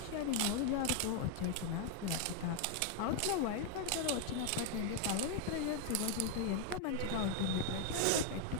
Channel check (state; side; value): different; both; correlation 0.00